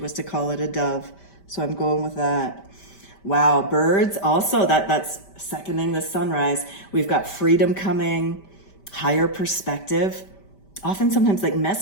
to call it a dove, so I'm going with that. Wow, birds also, that's seconding the sunrise. We've got freedom coming, higher perspective, often sometimes like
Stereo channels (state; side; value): late; right; 5.1 ms